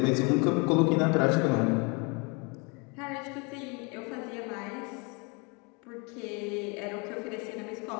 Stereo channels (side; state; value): right; quieter; 31.2 dB